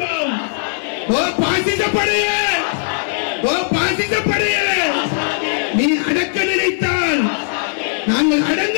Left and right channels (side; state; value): right; silent; 67 dB below the other